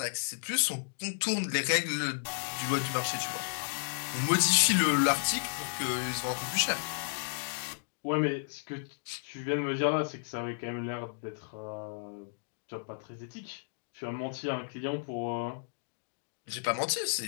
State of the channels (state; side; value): silent; right; digital silence